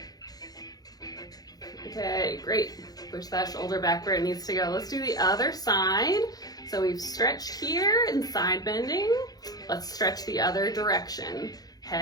Okay, great. Push that shoulder back where it needs to go. Let's do the other side. So we've stretched here in side bending. Let's stretch the other direction.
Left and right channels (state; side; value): late; right; 0.19 ms